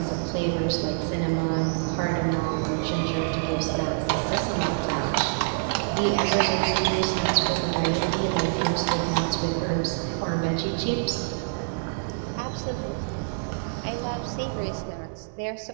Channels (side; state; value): left; silent; 61 dB below the other